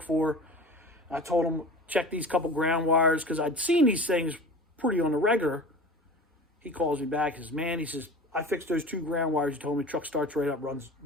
for. I told him, check these couple ground wires, because I'd seen these things pretty on the regular. He calls me back. He says, man, I fixed those 2 ground wires. He told me truck starts right up,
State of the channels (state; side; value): normal; both; correlation 0.37